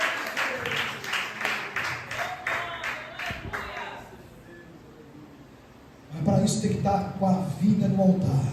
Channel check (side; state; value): both; identical; correlation 1.00